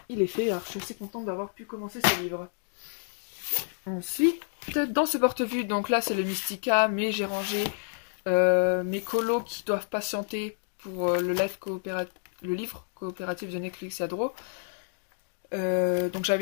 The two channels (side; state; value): right; silent; digital silence